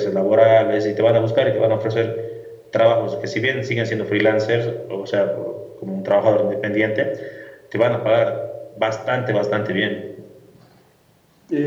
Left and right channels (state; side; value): identical; both; correlation 1.00